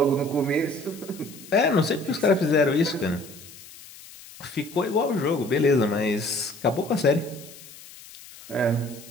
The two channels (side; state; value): left; noise; hiss, 18 dB below the sound